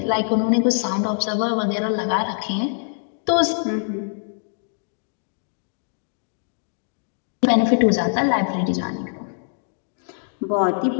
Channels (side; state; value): right; silent; 63 dB below the other